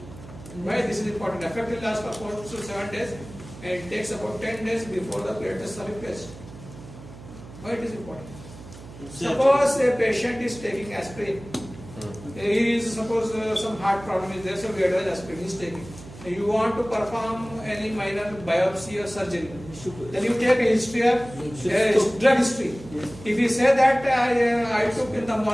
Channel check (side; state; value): right; noise; hum, 16 dB below the sound